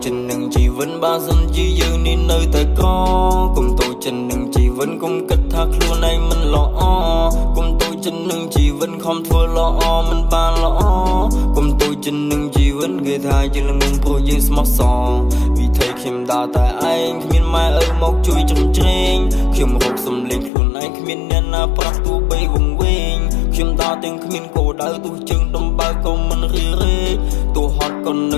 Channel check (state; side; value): drops out; right; at 20.5 s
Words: ចិននឹងជីវិតបើសិនជាយើងនេះនៅតែក្រកុំទូចិននឹងជីវិតកុំគិតថាខ្លួនឯងមិនល្អកុំទូចិននឹងជីវិតខំធ្វើល្អមិនបានល្អកុំទូចិននឹងជីវិតគឺថាយើងនឹងព្រោះយើងស្មោះសរវិធីខ្ញុំដើរតែឯងគ្មានម៉ែឪមកជួយជ្រំជ្រែងខ្ញុំរកសំលេងខ្លួនឯងគ្មានអ្នកណាប្រាប់ទោះបីវង្វេងខ្ញុំដើរទាំងគ្មានគោលដៅទោះជើងដំបើក៏មិនរីរេទោះហត់ក៏ន